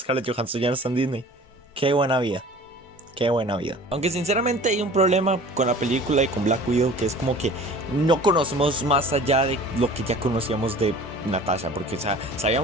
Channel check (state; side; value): normal; both; correlation 0.44